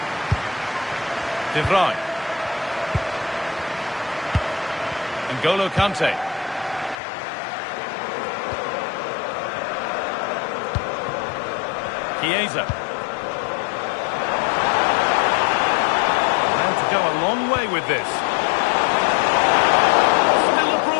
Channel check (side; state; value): right; drops out; at 7.0 s